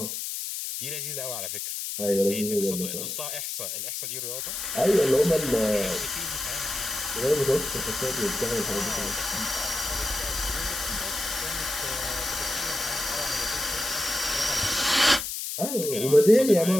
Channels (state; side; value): noise; left; hiss, 4 dB below the sound